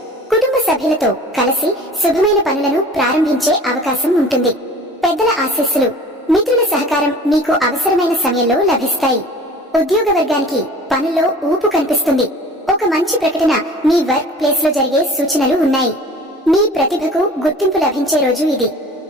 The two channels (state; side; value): normal; both; correlation 0.44